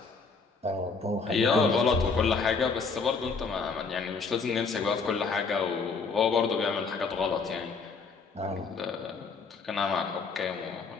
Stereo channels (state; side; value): quieter; right; 4.8 dB